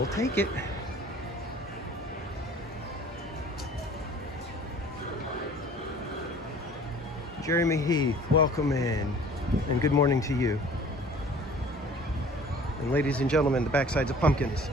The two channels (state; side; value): normal; both; correlation 0.48